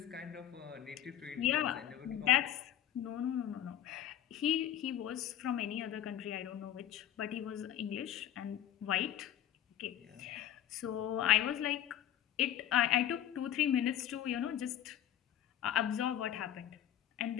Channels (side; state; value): right; quieter; 11.3 dB